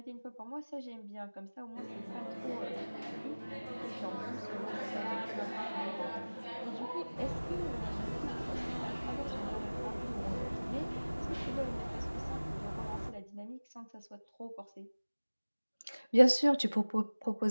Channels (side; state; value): both; inverted; correlation -1.00